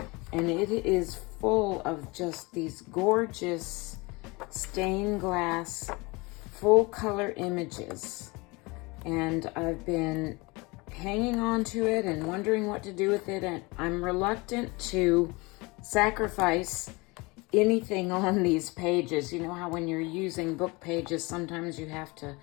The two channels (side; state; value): right; quieter; 25.3 dB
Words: and it is full of just these gorgeous stained glass full color images. And I've been hanging on to it and wondering what to do with it, and I'm reluctant to sacrifice anything on these pages. You know how when you're using book pages, sometimes you have to